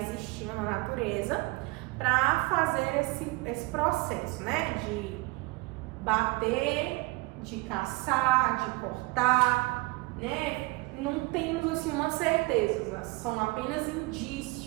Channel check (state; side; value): quieter; left; 23.8 dB